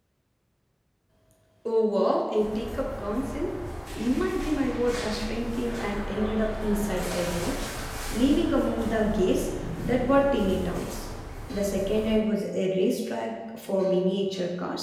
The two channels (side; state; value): both; identical; correlation 1.00